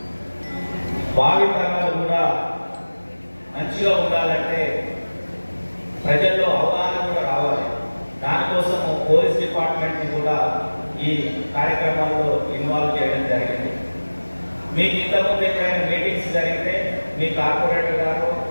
భావి తరాలు కూడా మంచిగా ఉండాలంటే ప్రజల్లో అవగాహన కూడా రావాలి. దానికోసం పోలీస్ డిపార్ట్మెంట్ని కూడా ఈ కార్యక్రమాల్లో ఇన్వాల్వ్ చేయడం జరిగింది. మీకు ఇంతకుముందు ఎక్కడైనా మీటింగ్స్ జరిగితే మీ కార్పొరేటర్ గారు,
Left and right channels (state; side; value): inverted; both; correlation -1.00